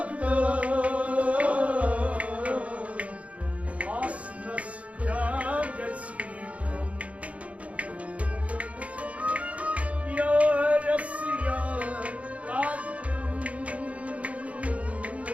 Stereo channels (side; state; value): left; late; 0.065 ms